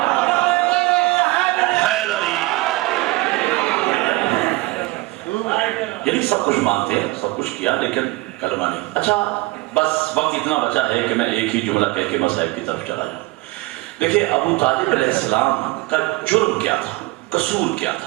یعنی سب کچھ مانتے ہیں، سب کچھ کیا، لیکن کلمہ نہیں. اچھا بس وقت اتنا بچا ہے کہ میں ایک ہی جملہ کہہ کے مسائل کی طرف چلا جاؤں. دیکھیں ابو طالب علیہ السلام کا جرم کیا تھا، قصور کیا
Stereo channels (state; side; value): quieter; left; 21.2 dB